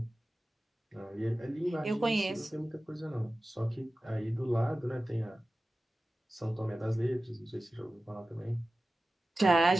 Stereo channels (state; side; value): normal; both; correlation 0.95